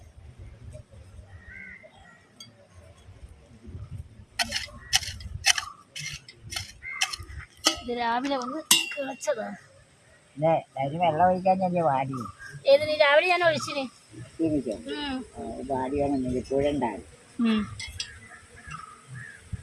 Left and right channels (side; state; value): both; identical; correlation 1.00